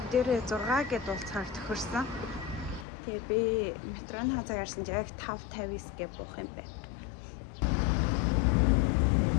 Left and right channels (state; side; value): drops out; right; at 2.9 s